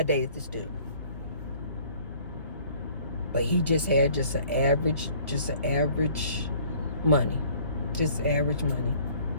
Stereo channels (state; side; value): inverted; both; correlation -0.55